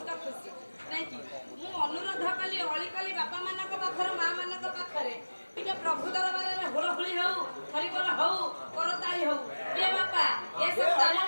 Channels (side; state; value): both; inverted; correlation -1.00